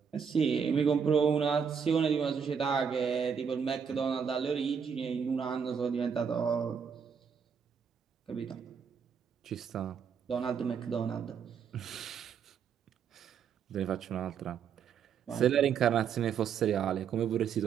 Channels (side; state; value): left; quieter; 6.9 dB